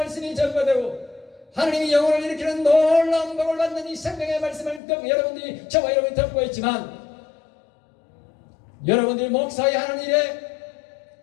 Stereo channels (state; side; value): drops out; right; at 4.8 s